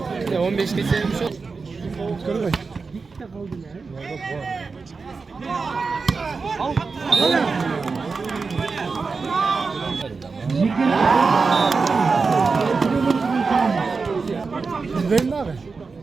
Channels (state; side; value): quieter; left; 4.6 dB